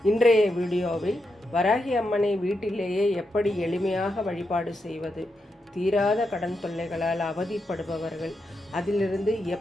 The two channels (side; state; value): both; normal; correlation 0.85